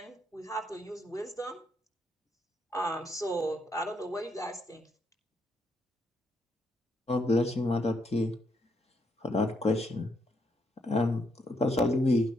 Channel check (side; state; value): both; normal; correlation 0.77